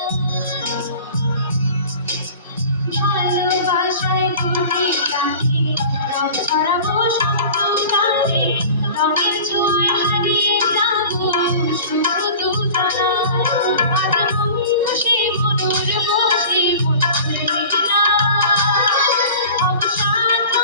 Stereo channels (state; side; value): inverted; both; correlation -0.41